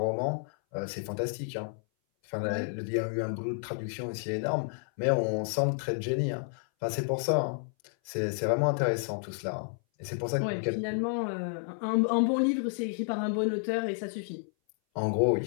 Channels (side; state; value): right; silent; 57 dB below the other